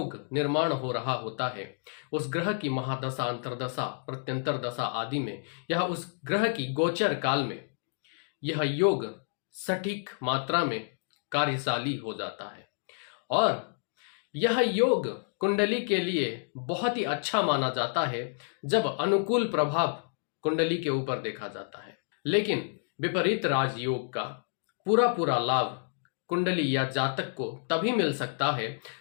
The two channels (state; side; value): silent; right; digital silence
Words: निर्माण हो रहा होता है, उस ग्रह की महादशा, अंतरदशा, प्रत्यंतर दशा आदि में यह उस ग्रह की गोचर काल में यह योग सटीक मात्रा में कार्यशाली हो जाता है। और यह योग कुंडली के लिए बहुत ही अच्छा माना जाता है जब अनुकूल प्रभाव कुंडली के ऊपर देखा जाता है। लेकिन विपरीत राजयोग का पूरा लाभ कुंडली या जातक को तभी मिल सकता है